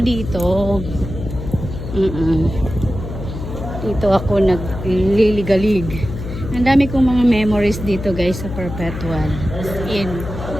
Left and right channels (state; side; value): noise; left; hum, 8 dB below the sound